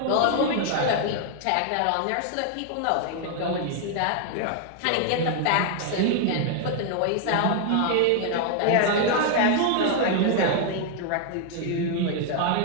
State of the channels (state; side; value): different; both; correlation 0.00